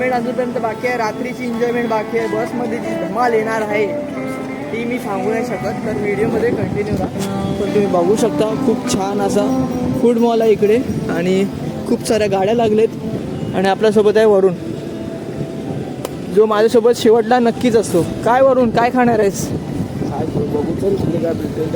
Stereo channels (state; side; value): identical; both; correlation 1.00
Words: अजूनपर्यंत बाकी आहे. रात्रीची एन्जॉयमेंट बाकी आहे. बसमध्ये जी धमाल येणार आहे ती मी सांगू नाही शकत. तर व्हिडिओमध्ये कंटिन्यू राहा. पण तुम्ही बघू शकता खूप छान असा फूड मॉल आहे इकडे आणि खूप साऱ्या गाड्या लागलेत आणि आपल्यासोबत आहे वरुण जो माझ्यासोबत शेवटला नक्कीच असतो. काय वरुण काय खाणार आहेस? बघू चल पुढे काय भेटेल